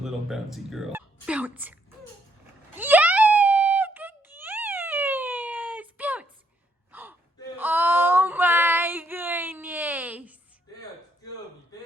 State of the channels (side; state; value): both; normal; correlation 0.74